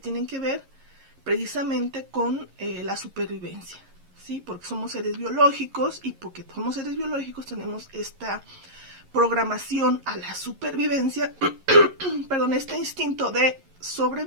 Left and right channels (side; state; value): left; late; 11 ms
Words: que ver precisamente con la supervivencia, ¿sí? Porque somos seres biológicos y porque somos seres biológicos tenemos esta programación a la supervivencia, perdón, este instinto de